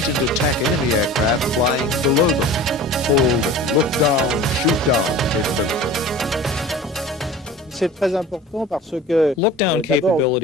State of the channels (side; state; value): both; normal; correlation 0.39